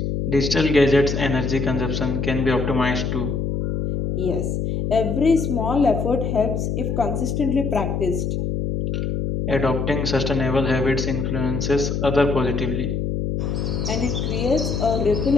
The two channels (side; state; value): left; noise; hum, 1 dB below the sound